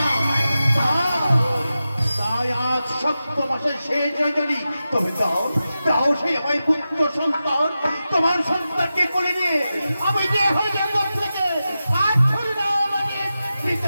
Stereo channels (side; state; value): both; inverted; correlation -0.92